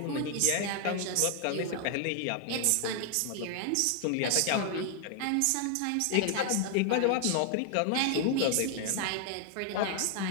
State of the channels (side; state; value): both; different; correlation 0.00